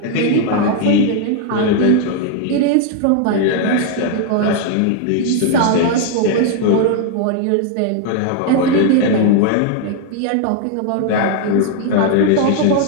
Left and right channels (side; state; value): both; different; correlation 0.00